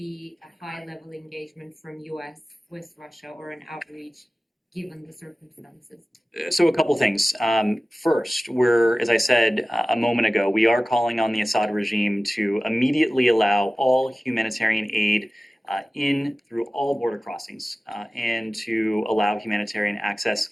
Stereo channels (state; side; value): normal; both; correlation 0.97